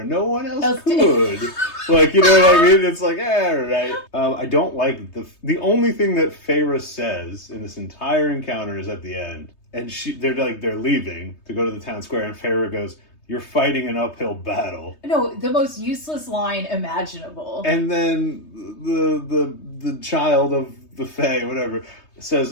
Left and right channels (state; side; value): late; right; 3.2 ms